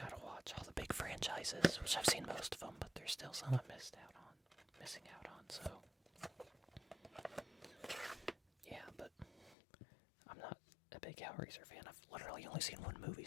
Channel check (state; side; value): drops out; right; at 9.6 s